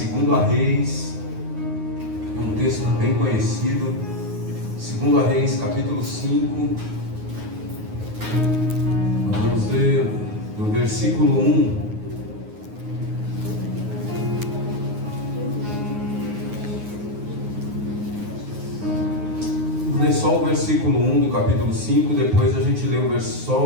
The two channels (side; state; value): left; late; 9.5 ms